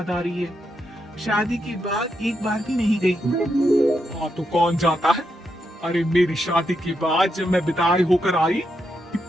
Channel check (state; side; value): normal; both; correlation 0.82